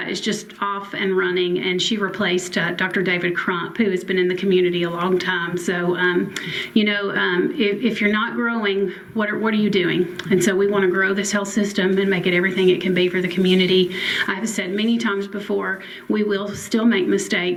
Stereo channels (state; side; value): identical; both; correlation 1.00